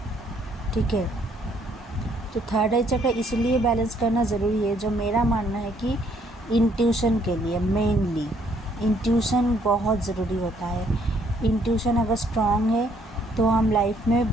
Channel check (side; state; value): both; normal; correlation 0.67